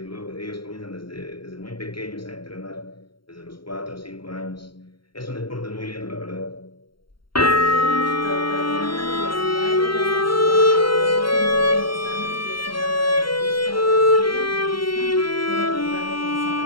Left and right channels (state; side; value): late; right; 0.73 ms